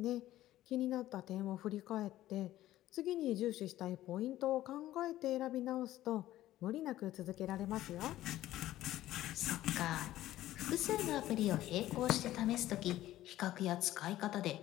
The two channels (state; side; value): quieter; right; 14.5 dB